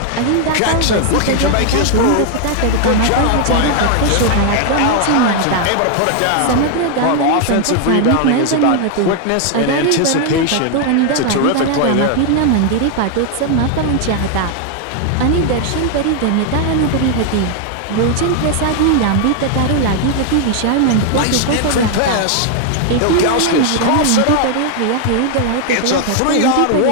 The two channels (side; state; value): both; different; correlation 0.00